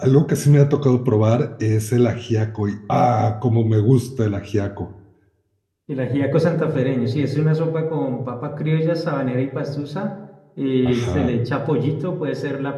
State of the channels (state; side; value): identical; both; correlation 1.00